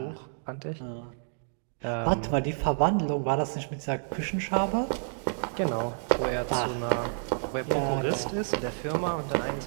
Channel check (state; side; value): silent; left; digital silence